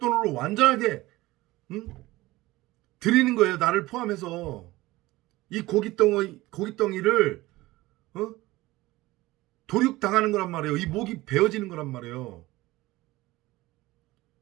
완전하게, 응? 드리는 거예요. 나를 포함해서. 이 고깃덩이를, 어? 도륙당하는 거란 말이에요. 이 목이 베어지는 거란 말이에요.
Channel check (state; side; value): quieter; left; 18.9 dB